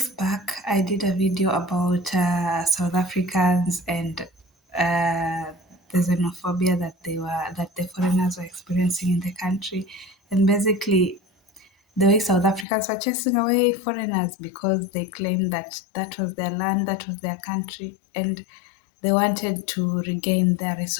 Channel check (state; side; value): drops out; right; at 12.7 s